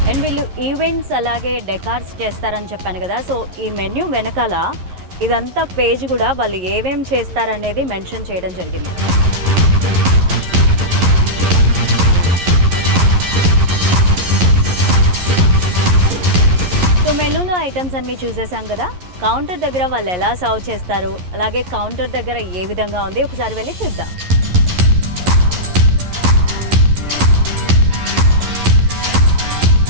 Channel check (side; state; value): left; late; 11 ms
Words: అండ్ వీళ్ళు ఈవెంట్స్ అలాగే డెకార్స్ చేస్తారని చెప్పాను కదా. సో ఈ మెన్యూ వెనకాల ఇదంతా పేజ్ కూడా వాళ్ళు ఏమేం చేస్తారనేది మెన్షన్ చేయడం జరిగింది. సో మెనూలో ఐటమ్స్ అన్నీ చూసేసాం కదా. కౌంటర్ దగ్గర వాళ్ళు ఎలా సర్వ్ చేస్తారు, అలాగే కౌంటర్ దగ్గర ఏ విధంగా ఉంది ఒకసారి వెళ్ళి చూద్దాం.